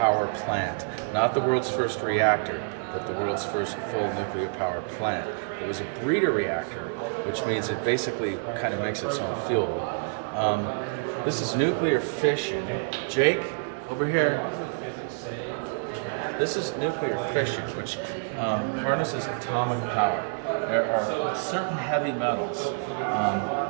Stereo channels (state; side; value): silent; left; digital silence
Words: plant. Not the world's first reactor, but the world's first full nuclear power plant. It was a breeder reactor, which means it basically kind of makes its own fuel. This is nuclear fission. Jake, over here. This is nuclear fission, which harnesses atomic power. There are certain heavy metals.